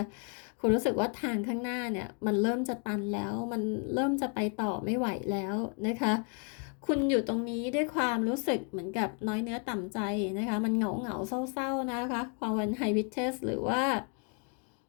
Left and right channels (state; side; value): quieter; right; 40.0 dB